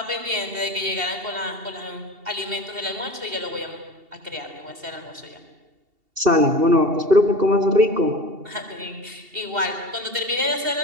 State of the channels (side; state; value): left; late; 2.7 ms